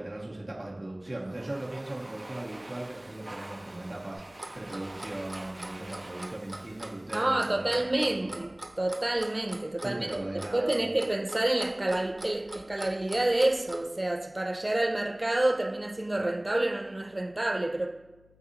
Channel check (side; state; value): left; noise; hum, 29 dB below the sound